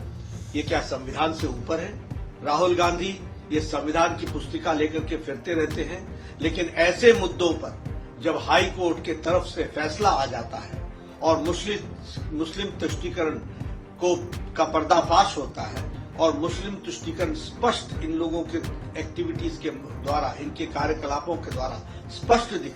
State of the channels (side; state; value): both; identical; correlation 1.00